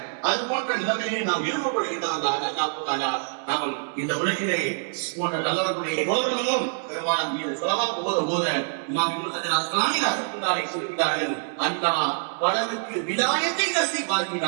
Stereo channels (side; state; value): left; silent; 58 dB below the other